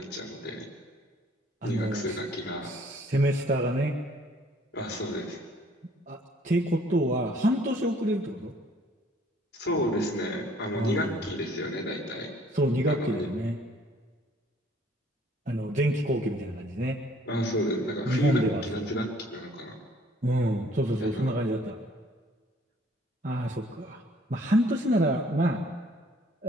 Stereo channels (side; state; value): both; normal; correlation 0.59